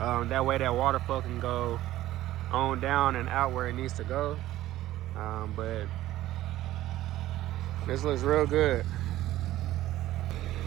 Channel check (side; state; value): left; quieter; 14.8 dB